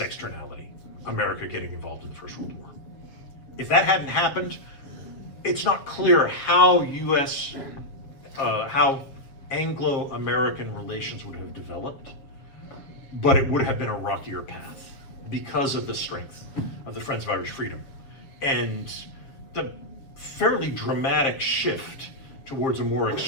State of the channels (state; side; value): late; right; 7.4 ms